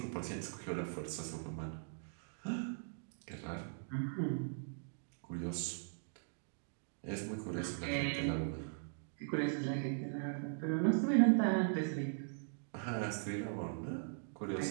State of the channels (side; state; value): left; silent; digital silence